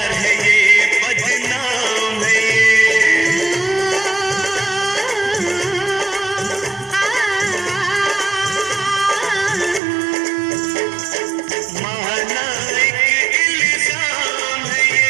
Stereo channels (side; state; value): left; drops out; at 9.8 s